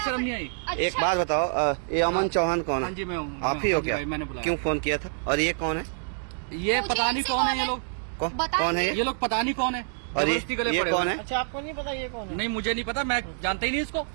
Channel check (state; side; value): silent; left; digital silence